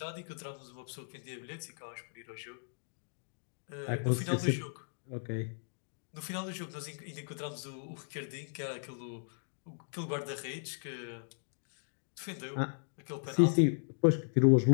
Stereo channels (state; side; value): silent; right; digital silence